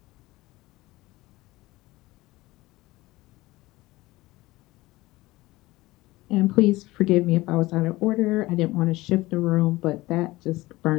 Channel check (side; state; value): right; quieter; 19.2 dB